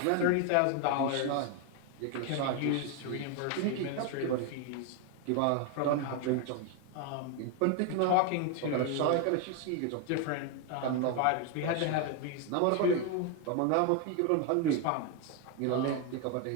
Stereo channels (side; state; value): both; different; correlation 0.01